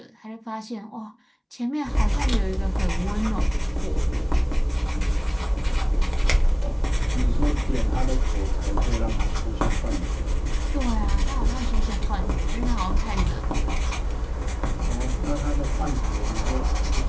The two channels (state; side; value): identical; both; correlation 1.00